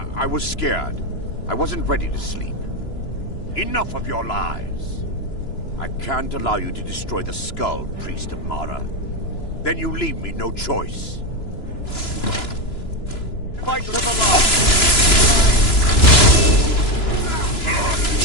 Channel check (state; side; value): late; right; 3.0 ms